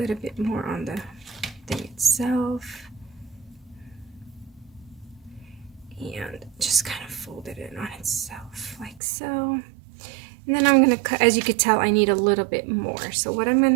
bit more on the thing itself, and just kind of fold it in on itself like so. And then I'm gonna cut. As you could tell, I need a little bit more. So what I'm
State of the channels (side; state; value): left; drops out; at 9.0 s